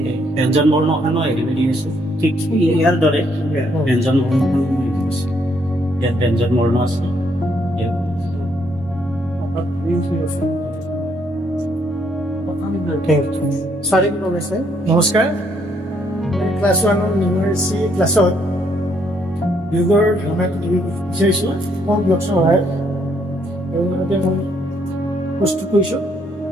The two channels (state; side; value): normal; both; correlation 0.71